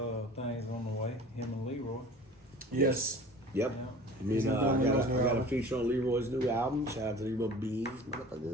things on the way. Him and Leroy. Yes. Yep. Yeah. I mean, He's gonna I be on Leroy's new got a album. feature on Leroy's new album. Shout out to Leroy Beans.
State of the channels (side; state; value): both; normal; correlation 0.43